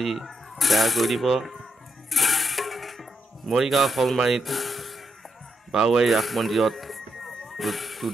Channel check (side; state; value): both; normal; correlation 0.82